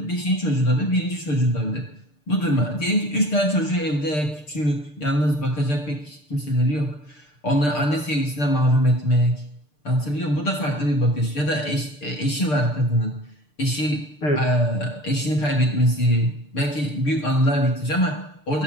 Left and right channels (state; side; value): late; right; 6.7 ms